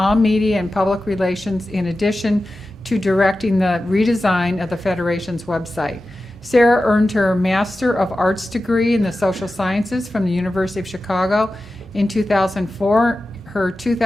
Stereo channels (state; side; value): normal; both; correlation 0.94